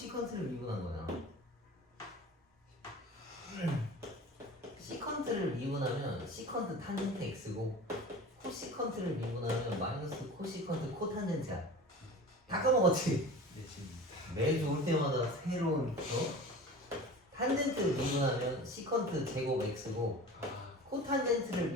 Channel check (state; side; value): normal; both; correlation 0.37